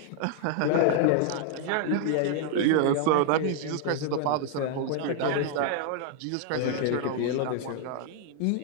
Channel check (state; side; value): different; both; correlation 0.00